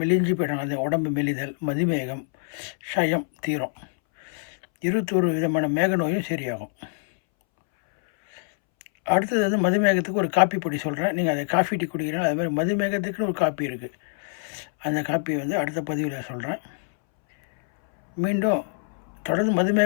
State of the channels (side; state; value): right; silent; 62 dB below the other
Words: போயிடும், அந்த உடம்பு மெலிதல், மதுமேகம், ஷயம் தீரும். 21 விதமான மேக நோயும் சரியாகும். அடுத்தது மதுமேகத்துக்கு ஒரு காப்பி பொடி சொல்கிறேன். நீங்கள் அதை காஃபி டீ குடிக்கிறீங்கன்னா அது மாதிரி மதுமேகத்துக்குன்னு ஒரு காப்பி இருக்குது. அந்த காப்பி அடுத்த பதிவில் சொல்கிறேன். மீண்டும் தொடர்ந்து